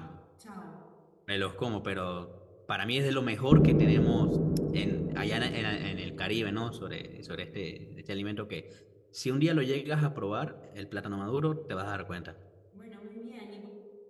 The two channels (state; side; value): identical; both; correlation 1.00